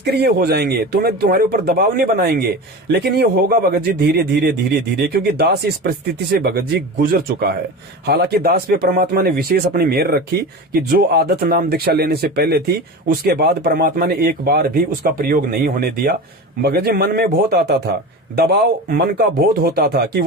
हो जाएंगे, तुम्हारे ऊपर दबाव नहीं बनाएंगे। लेकिन ये होगा भगत जी धीरे धीरे धीरे धीरे, क्योंकि दास इस परिस्थिति से भगत जी गुजर चुका है। हालांकि दास पे परमात्मा ने विशेष अपनी मेहर रखी कि जो आदत नाम दीक्षा लेने से पहले थी, उसके बाद परमात्मा ने एक बार भी उसका प्रयोग नहीं होने दिया। भगत जी मन में बहुत आता था दबाव मन का बहुत होता था कि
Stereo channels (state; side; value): normal; both; correlation 0.29